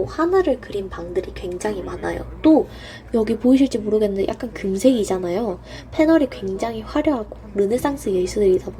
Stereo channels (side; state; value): both; identical; correlation 1.00